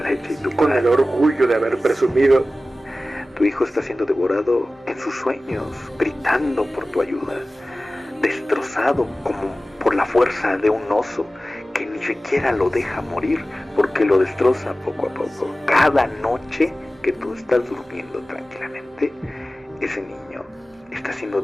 y tu con el orgullo de haber presumido, tu hijo está siendo devorado en sus sueños, gritando por tu ayuda, destrozado como por la fuerza de un oso que ni siquiera lo deja morir porque lo destroza poco a poco. Cada noche que tú estás durmiendo tranquilamente, ese niño está siendo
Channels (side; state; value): both; normal; correlation 0.96